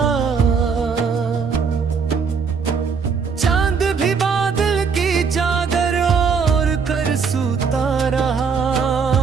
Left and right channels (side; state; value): left; quieter; 5.7 dB